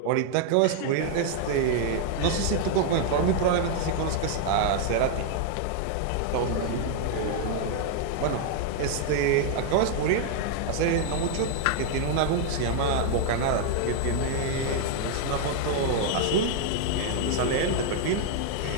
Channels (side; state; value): both; different; correlation 0.00